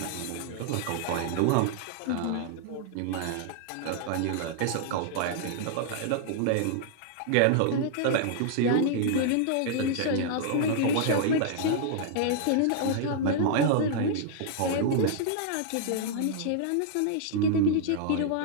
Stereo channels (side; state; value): both; different; correlation -0.01